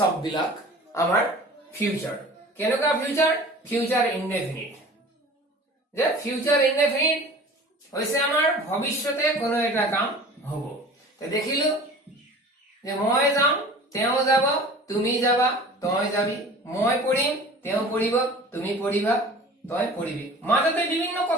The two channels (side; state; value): both; normal; correlation 0.42